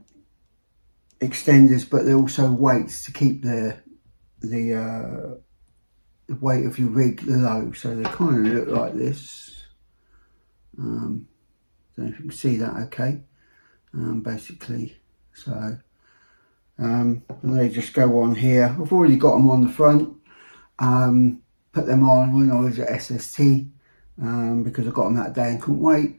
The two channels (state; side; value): inverted; both; correlation -1.00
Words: extenders, but they're also weights to keep the weight of your rig low. So they kind of look like this. Don't know if you can see that okay. Basically, so and they just go on here. I've already got them on the front. Put them on when I was at SST because I got them that day and couldn't wait.